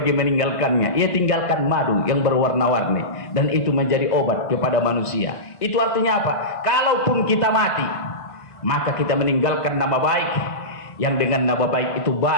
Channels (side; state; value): right; late; 1.5 ms